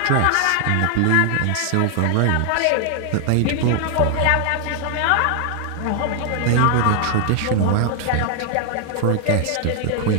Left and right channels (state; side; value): different; both; correlation 0.00